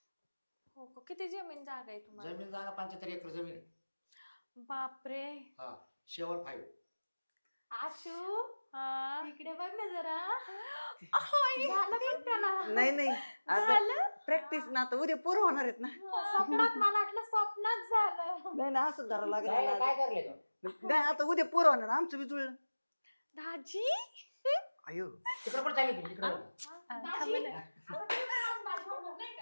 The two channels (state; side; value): inverted; both; correlation -1.00